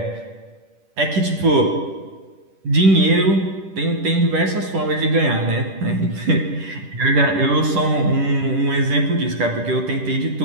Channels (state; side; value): late; left; 10 ms